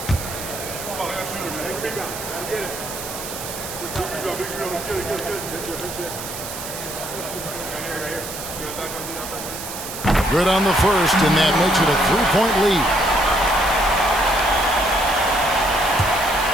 Good on the first, and that makes it a 3-point lead.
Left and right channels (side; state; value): right; noise; hiss, 9 dB below the sound